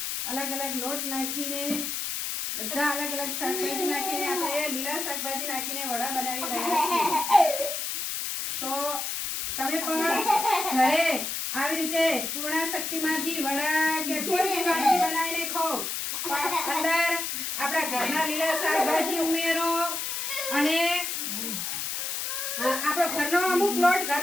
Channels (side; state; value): left; noise; hiss, 3 dB below the sound